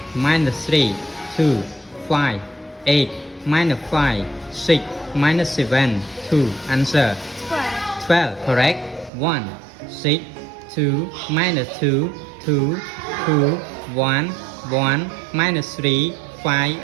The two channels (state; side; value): drops out; left; at 9.1 s